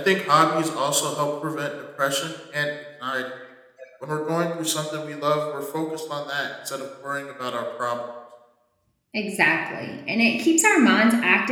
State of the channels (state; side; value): identical; both; correlation 1.00